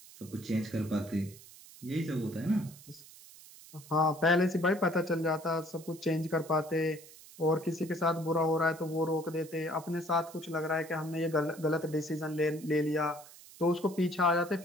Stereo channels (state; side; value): noise; right; hiss, 20 dB below the sound